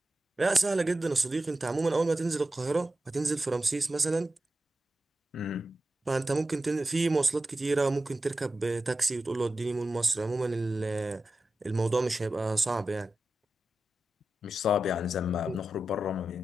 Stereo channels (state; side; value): normal; both; correlation 0.92